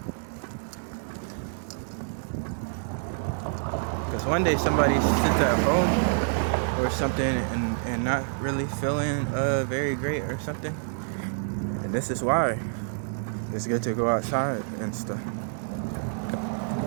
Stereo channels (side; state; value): left; silent; digital silence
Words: Because one day somebody sits at home or something and not really feeling very great or something. And this is why it's good to go outside and stuff.